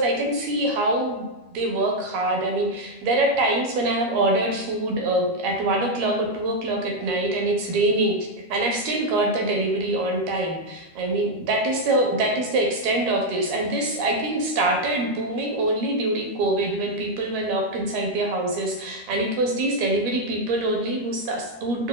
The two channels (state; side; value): late; left; 13 ms